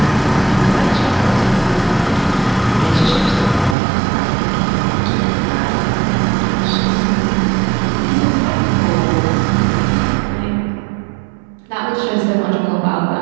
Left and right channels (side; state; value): left; drops out; at 3.8 s